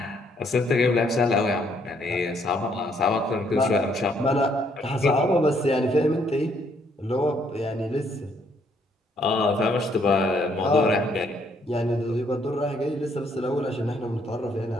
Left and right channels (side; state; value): both; normal; correlation 0.69